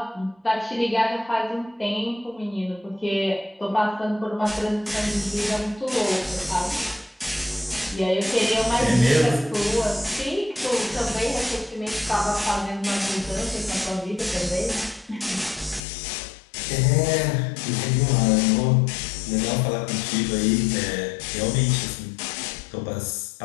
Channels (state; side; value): drops out; right; at 15.8 s